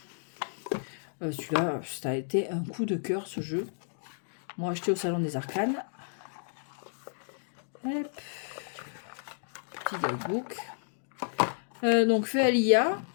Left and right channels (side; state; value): right; silent; digital silence